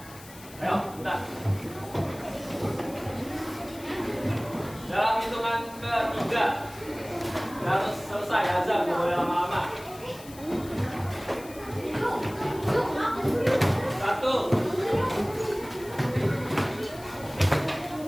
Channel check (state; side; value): noise; left; hiss, 19 dB below the sound